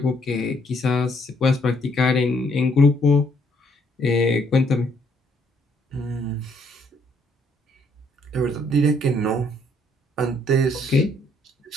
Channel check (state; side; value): normal; both; correlation 0.68